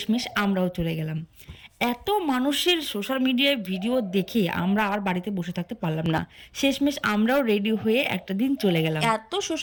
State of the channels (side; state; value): both; identical; correlation 1.00